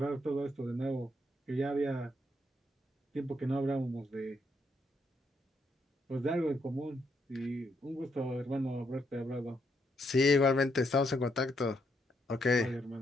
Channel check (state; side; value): normal; both; correlation 0.76